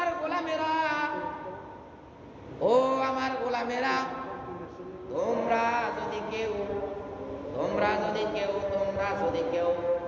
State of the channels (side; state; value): both; identical; correlation 1.00